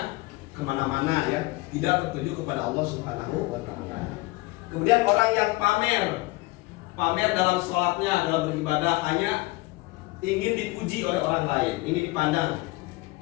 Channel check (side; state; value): right; quieter; 21.8 dB